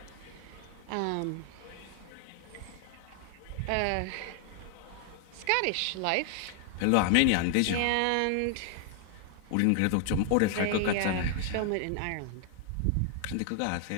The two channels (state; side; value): different; both; correlation 0.00